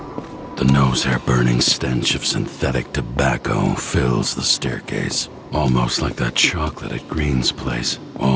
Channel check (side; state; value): both; identical; correlation 1.00